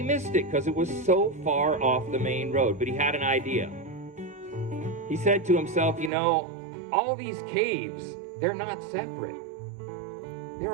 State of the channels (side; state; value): left; drops out; at 6.1 s